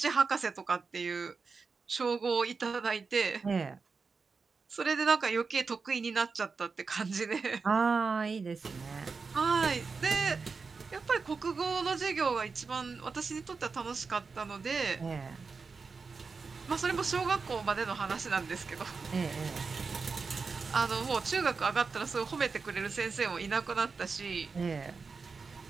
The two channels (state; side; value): quieter; left; 4.8 dB